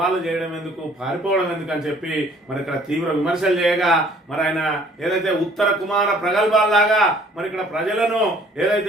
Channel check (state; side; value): normal; both; correlation 0.57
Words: చేయడం ఎందుకు, పారిపోవడం ఎందుకు అని చెప్పి మరి ఇక్కడ తీవ్ర విమర్శలు చేయగా మరి ఆయన ఏదైతే ఉత్తర కుమార ప్రగల్భాల్లాగా మరి ఇక్కడ ప్రజలను